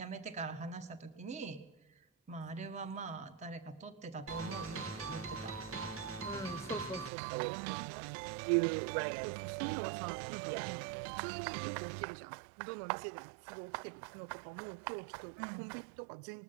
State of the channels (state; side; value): drops out; left; at 7.1 s